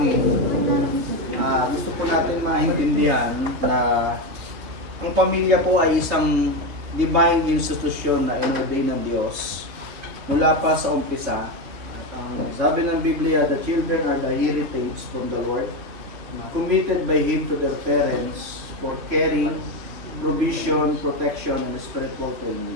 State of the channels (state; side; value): late; left; 3.1 ms